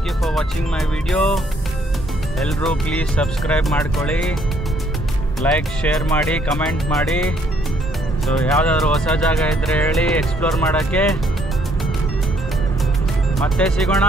you for watching my video. ಎಲ್ಲರೂ ಪ್ಲೀಸ್ ಸಬ್ಸ್ಕ್ರೈಬ್ ಮಾಡ್ಕೊಳ್ಳಿ, ಲೈಕ್ ಶೇರ್ ಮಾಡಿ, ಕಮೆಂಟ್ ಮಾಡಿ. ಸೊ ಯಾವುದಾದ್ರೂ ಹೊಸ ಜಾಗ ಇದ್ದರೆ ಹೇಳಿ ಎಕ್ಸ್ಪ್ಲೋರ್ ಮಾಡೋಕ್ಕೆ. ಮತ್ತೆ ಸಿಗೋಣ.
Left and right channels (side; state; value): both; normal; correlation 0.67